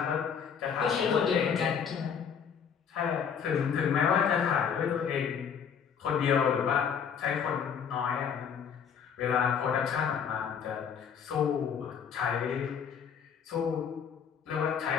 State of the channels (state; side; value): quieter; right; 7.3 dB